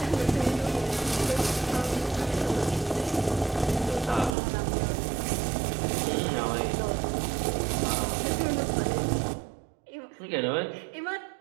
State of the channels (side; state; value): left; drops out; at 4.3 s